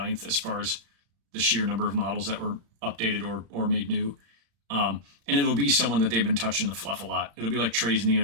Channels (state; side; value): late; left; 35 ms